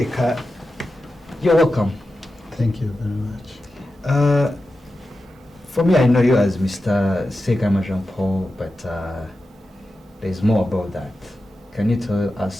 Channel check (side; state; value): both; normal; correlation 0.92